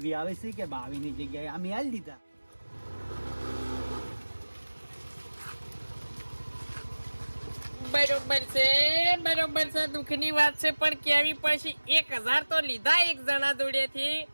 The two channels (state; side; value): inverted; both; correlation -1.00